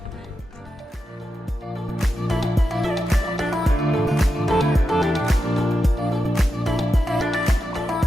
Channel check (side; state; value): both; normal; correlation 0.88